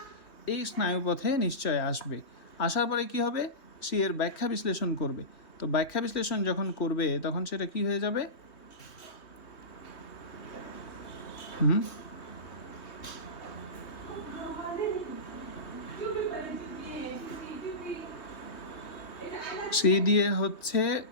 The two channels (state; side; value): late; right; 3.2 ms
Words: এই স্নায়ুপথে নিশ্চয় আসবে। আসার পরে কি হবে? সে এর ব্যাখ্যা বিশ্লেষণ করবে। তো ব্যাখ্যা বিশ্লেষণ যখন করবে, তখন সেটা কি হয়ে যাবে? সি দিয়ে হচ্ছে